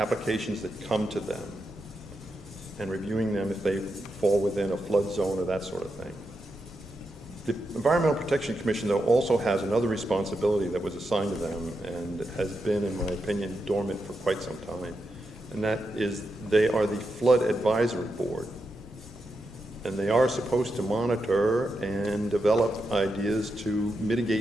that come to them and reviewing them if they fall within a flood zone or that sort of thing. The Environmental Protection Commission, though, also has another responsibility that was assigned to them and has been, in my opinion, dormant for quite some time, and that is they are the Flood Advisory Board. And they are supposed to monitor and develop ideas to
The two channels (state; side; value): normal; both; correlation 0.86